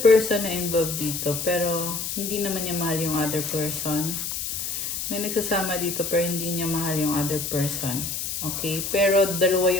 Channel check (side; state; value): left; noise; hiss, 4 dB below the sound